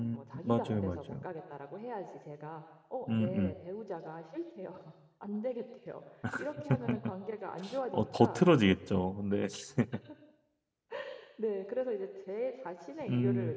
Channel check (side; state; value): both; identical; correlation 1.00